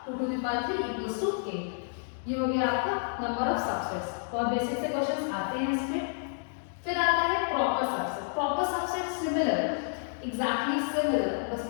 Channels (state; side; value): silent; right; digital silence